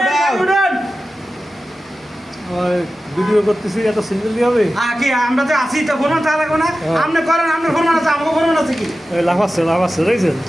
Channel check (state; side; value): normal; both; correlation 0.94